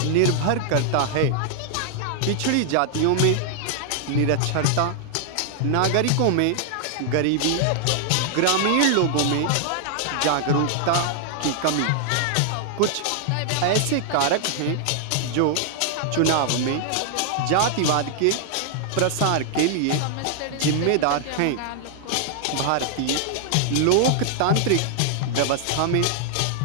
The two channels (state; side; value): different; both; correlation 0.00